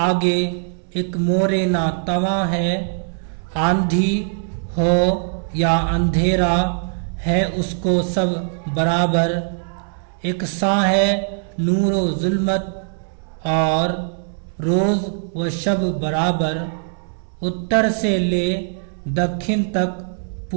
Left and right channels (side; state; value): left; silent; digital silence